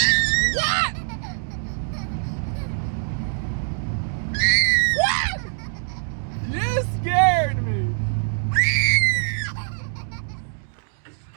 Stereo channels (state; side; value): silent; left; digital silence